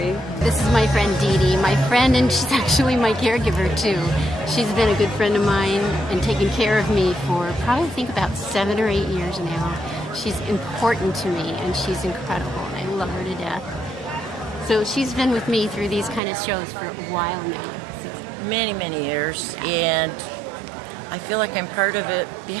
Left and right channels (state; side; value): drops out; left; at 16.2 s